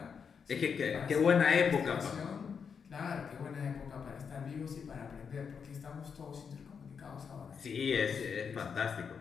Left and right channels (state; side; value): quieter; right; 6.4 dB